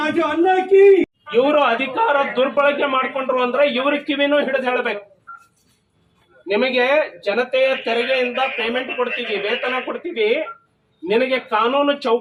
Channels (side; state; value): both; identical; correlation 1.00